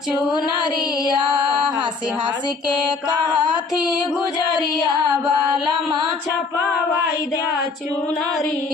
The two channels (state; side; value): quieter; right; 4.3 dB